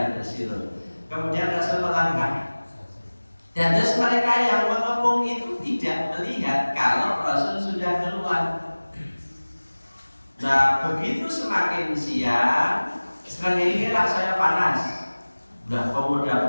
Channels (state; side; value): inverted; both; correlation -1.00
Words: yubsirun. Kemudian Rasul melangkah. Dan terus mereka yang mengepung itu tidak melihat kalau Rasul sudah keluar. Nah, begitu semakin siang, semakin lah saya panas. Udah